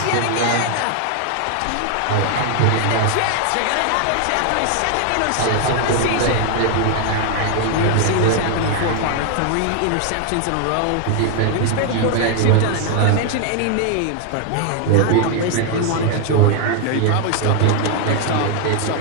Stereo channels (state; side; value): different; both; correlation 0.00